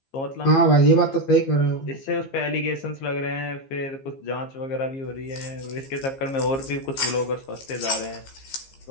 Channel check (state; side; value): late; right; 15 ms